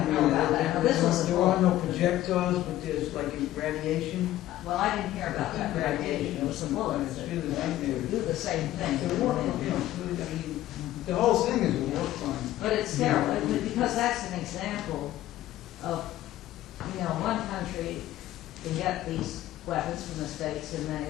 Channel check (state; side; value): quieter; right; 14.3 dB